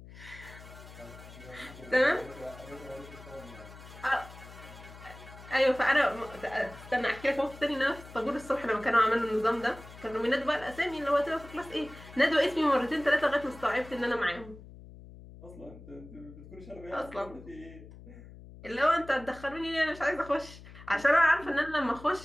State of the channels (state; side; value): noise; left; hum, 17 dB below the sound